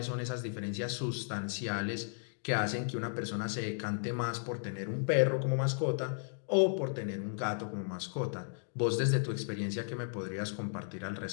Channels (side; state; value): right; silent; digital silence